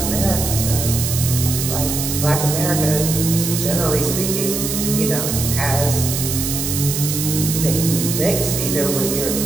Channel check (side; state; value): right; noise; hiss, 3 dB below the sound